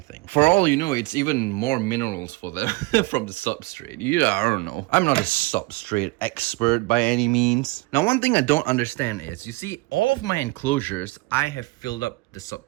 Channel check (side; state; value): left; quieter; 23.6 dB